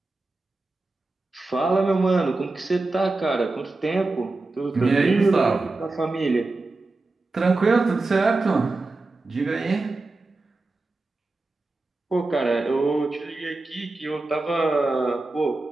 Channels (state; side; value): quieter; left; 3.3 dB